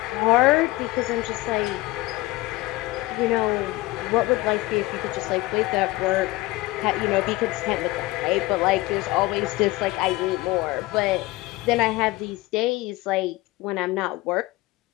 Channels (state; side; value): quieter; right; 20.1 dB